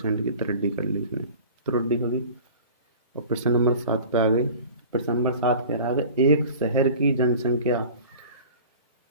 की त्रुटि कर ली उसने, त्रुटि होगी। और प्रश्न नंबर 7 पे आ गए। प्रश्न नंबर 7 कह रहा है एक शहर की जनसंख्या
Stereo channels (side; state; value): both; inverted; correlation -0.41